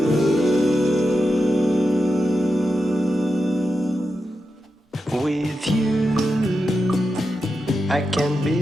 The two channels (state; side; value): normal; both; correlation 0.89